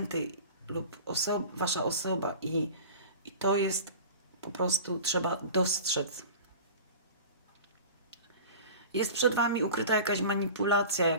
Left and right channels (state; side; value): inverted; both; correlation -0.37